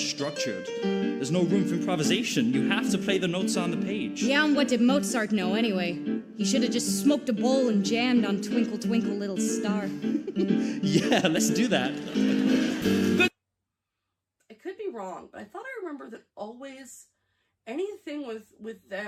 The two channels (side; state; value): both; identical; correlation 1.00